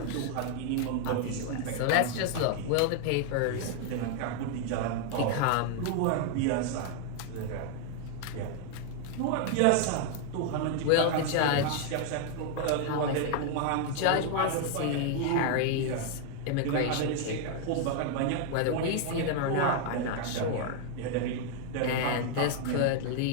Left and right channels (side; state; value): both; different; correlation 0.00